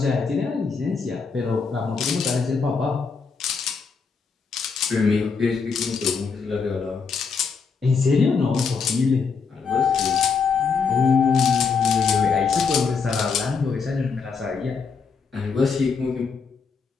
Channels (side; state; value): right; quieter; 5.3 dB